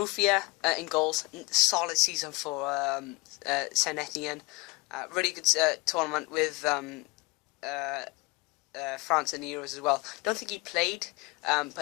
in goals, solid season for Saint Etienne. Really good tournament with France in the Euros as well. Don't think he played,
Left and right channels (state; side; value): quieter; right; 25.1 dB